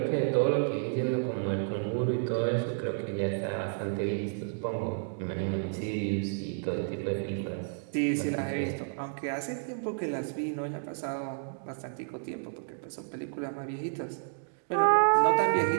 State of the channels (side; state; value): left; silent; digital silence